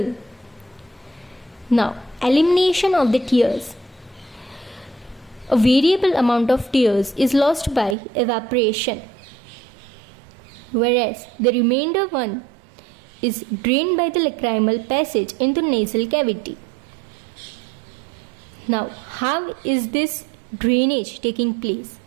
Now, elimination of the tears. A variable amount of tears is lost by evaporation, whereas the remainder one is drained by the lacrimal passage into nasal cavity. Now, how is this drainage taking place?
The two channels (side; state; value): left; drops out; at 8.0 s